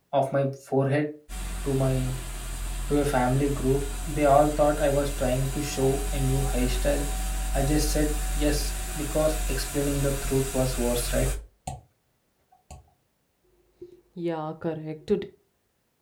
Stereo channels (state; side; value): identical; both; correlation 1.00